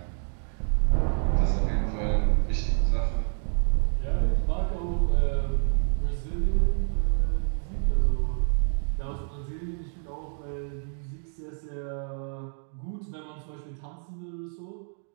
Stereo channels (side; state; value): left; silent; 60 dB below the other